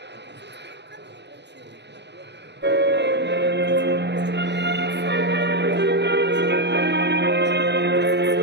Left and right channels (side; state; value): left; late; 0.50 ms